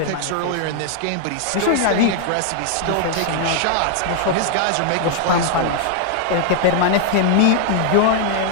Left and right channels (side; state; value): both; different; correlation 0.00